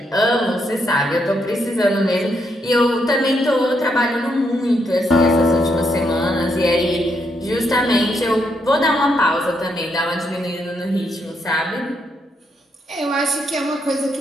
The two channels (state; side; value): normal; both; correlation 0.77